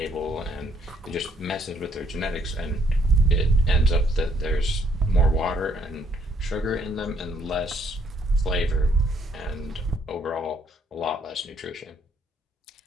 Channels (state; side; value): normal; both; correlation 0.68